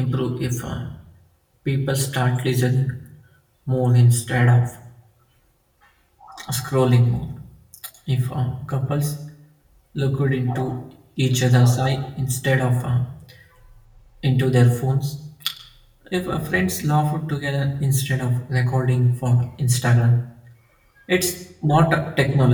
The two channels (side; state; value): both; identical; correlation 1.00